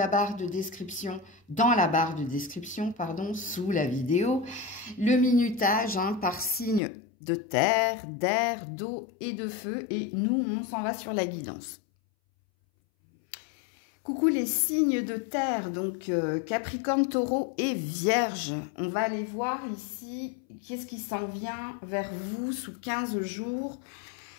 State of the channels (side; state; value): right; drops out; at 6.8 s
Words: barre de description, dans la barre de description, pardon, sous la vidéo, le minutage par signe de terre, d'air, d'eau et de feu. Et nous, on s'en va sur la guidance. Coucou les signes de terre, donc Capricorne, Taureau et Vierge. On va aller voir ici qu'est-ce qui s'en vient vers vous sous 15 jours.